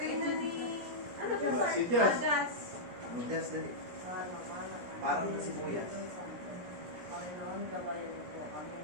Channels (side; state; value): left; late; 17 ms